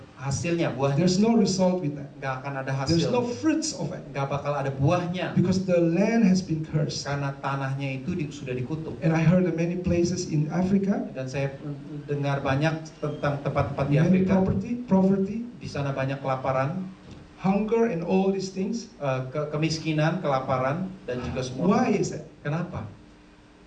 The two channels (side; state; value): both; identical; correlation 1.00